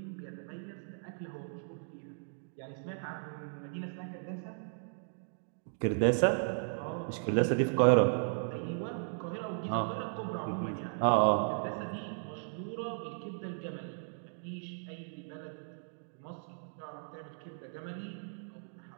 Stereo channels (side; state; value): left; silent; digital silence